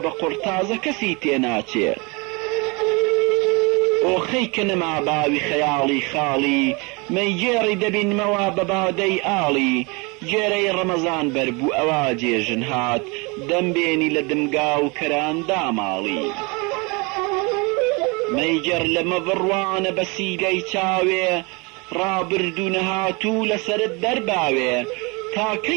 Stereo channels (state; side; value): quieter; left; 28.4 dB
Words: بە قورتازە کەسی تێناچێ ئۆخەی کە نەما باوی خەیاڵی خاڵی مەیگێڕی دەبینمەوە بە بادەی ئاڵی گێرەی ڕەمەزان بەربوو ئەوا جێژن هات دەمبێنی لە دمگا و کەراندا ماڵی مەیگەر لەمە بڕوانە بە سیگەی چاوێ ڕابردوو نەهاتوو لەسرت دەرباوێ